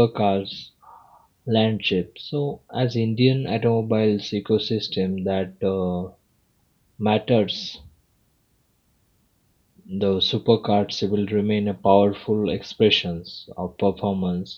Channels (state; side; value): identical; both; correlation 1.00